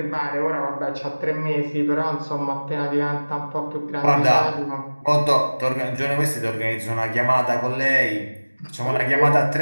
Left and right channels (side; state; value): both; inverted; correlation -1.00